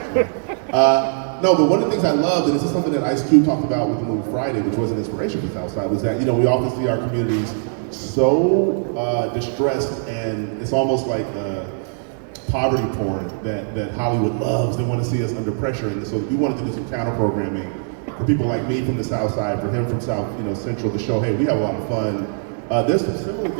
No, but one of the things I loved, and this is something that Ice Cube talked about with the movie Friday, which was an inspiration for Outside, was that, we often see our communities so distressed, and it's almost like poverty porn that Hollywood loves. They want to see us under pressure, and so we wanted to do some counter programming for people like me from the South Side, for him from South, Central, to show, hey, we have a lot of fun. There's several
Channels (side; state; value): left; silent; digital silence